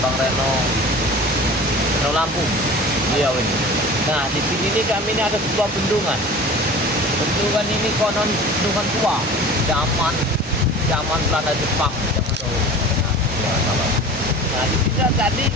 Reno Lampung. Iya ini. Nah, di sini nih kami ini ada sebuah bendungan. Bendungan ini konon bendungan tua, zaman Belanda Jepang zaman dahulu. Nah, di sini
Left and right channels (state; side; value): normal; both; correlation 0.39